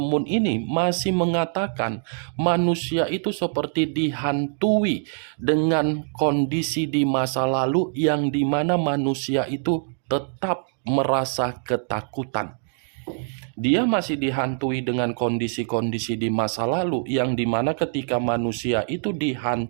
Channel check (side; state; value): left; silent; 63 dB below the other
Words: ini masih mengatakan manusia itu seperti dihantui dengan kondisi di masa lalu yang dimana manusia itu tetap merasa ketakutan. Dia masih dihantui dengan kondisi-kondisi di masa lalu yang dimana ketika manusia itu